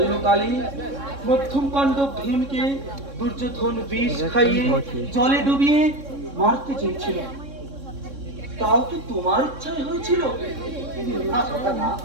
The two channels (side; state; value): left; late; 3.6 ms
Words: মধ্যম পাণ্ডব ভীমকে দুর্যোধন বিষ খাইয়ে জলে ডুবিয়ে মারতে চেয়েছিল, তাও কি তোমার ইচ্ছায় হয়েছিল? না কথা না,